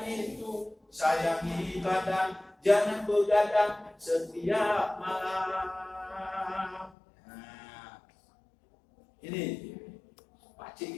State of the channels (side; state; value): right; drops out; at 7.0 s